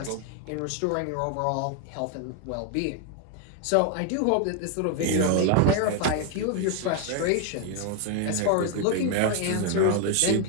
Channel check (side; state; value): both; different; correlation 0.01